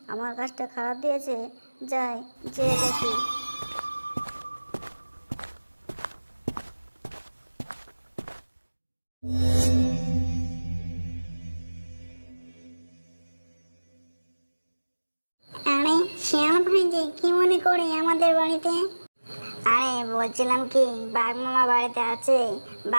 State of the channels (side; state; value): both; inverted; correlation -1.00